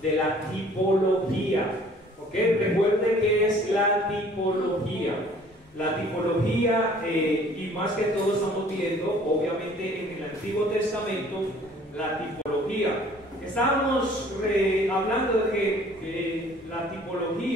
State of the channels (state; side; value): normal; both; correlation 0.54